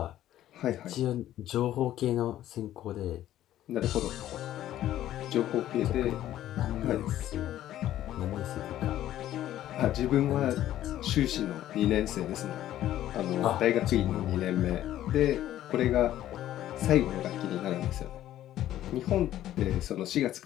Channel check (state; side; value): quieter; right; 12.9 dB